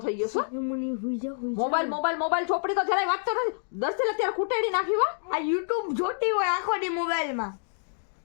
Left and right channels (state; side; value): silent; right; digital silence